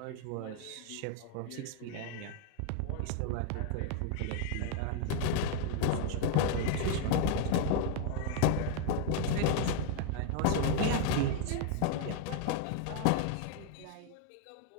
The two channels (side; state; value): both; different; correlation 0.01